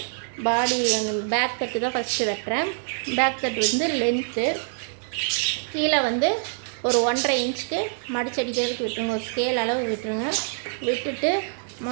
பாடி பேக் தட்டு தான் ஃபஸ்ட்டு வெட்டுறேன். பேக் தட்டு லென்த்து கீழே ஒரு 1.5 இன்ச்சுக்கு மடிச்சடிக்கிறதுக்கு விட்டுருங்க. ஒரு ஸ்கேல் அளவு விட்டுருங்க. விட்டுட்டு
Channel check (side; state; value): left; silent; 61 dB below the other